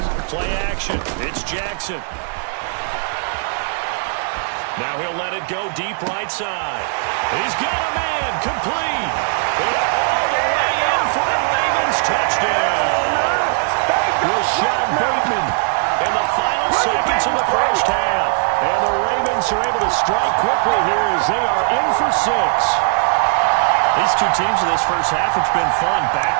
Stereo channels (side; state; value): left; silent; 60 dB below the other